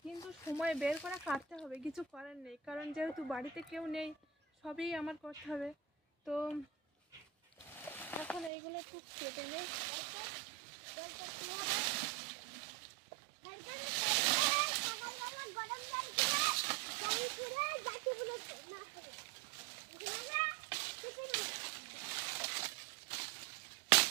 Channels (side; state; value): left; drops out; at 8.5 s